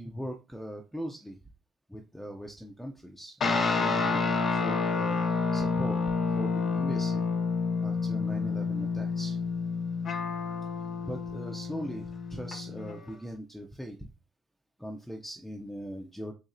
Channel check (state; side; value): quieter; right; 3.7 dB